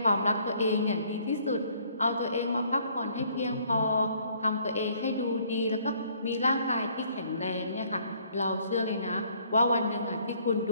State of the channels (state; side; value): inverted; both; correlation -0.63